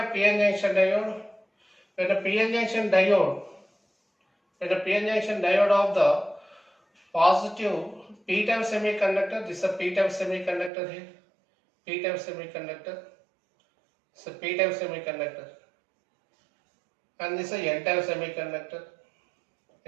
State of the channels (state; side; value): drops out; left; at 10.7 s